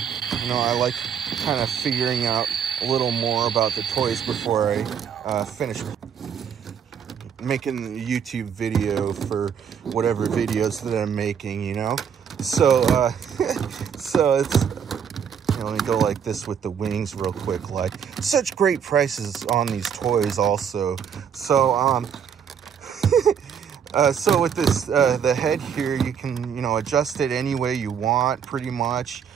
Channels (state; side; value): quieter; left; 7.7 dB